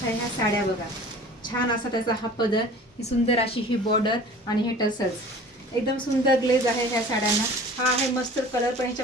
ह्या साड्या बघा. छान असा त्याचा हा पदर, ही सुंदर अशी ही बॉर्डर आणि हे टसल्स. एकदम सुंदर ग्लेज आहे ह्या साड्यांना. हा आहे मस्टर्ड कलर, पण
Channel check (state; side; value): normal; both; correlation 0.44